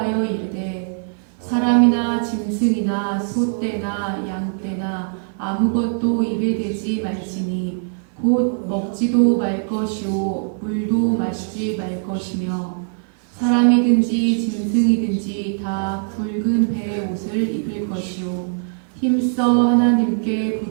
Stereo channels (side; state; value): left; silent; 56 dB below the other